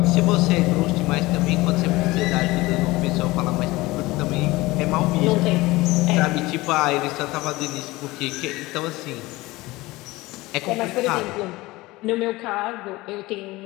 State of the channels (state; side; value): quieter; right; 20.4 dB